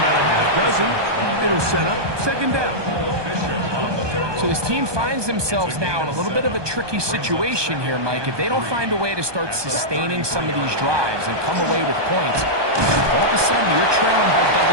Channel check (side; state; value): left; late; 1.2 ms